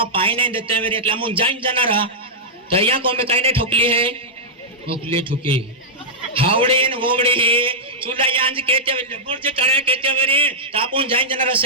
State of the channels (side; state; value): both; normal; correlation -0.09